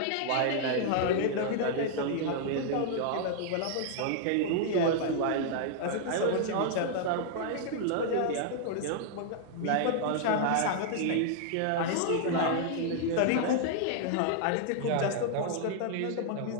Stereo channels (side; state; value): both; different; correlation -0.01